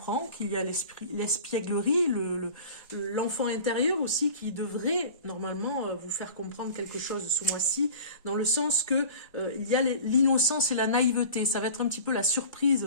qu'il y a l'espièglerie, l'enfant intérieur aussi qui devrait normalement vous faire comprendre quelque chose ce mois-ci, dans le sens que il y a l'innocence et la naïveté. Ça va être un petit peu la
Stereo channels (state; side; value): inverted; both; correlation -0.40